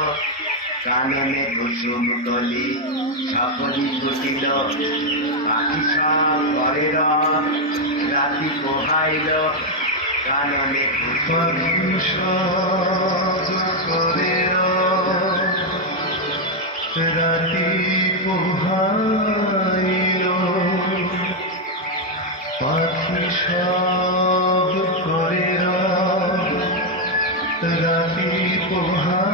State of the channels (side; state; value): both; normal; correlation 0.02